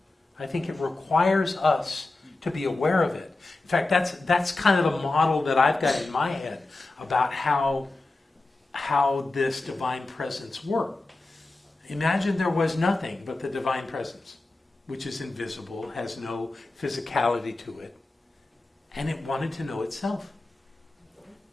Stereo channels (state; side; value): quieter; right; 3.1 dB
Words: I think it requires us to be aware of it. In fact, that's kind of a model that I've got in my head about how this divine presence worked. Imagine there was nothing but the divine presence, which is invisible, has no physicality to it, and it wanted to know itself.